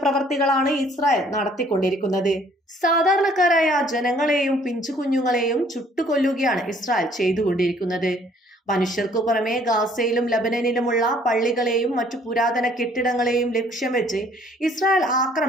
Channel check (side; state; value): both; normal; correlation 0.59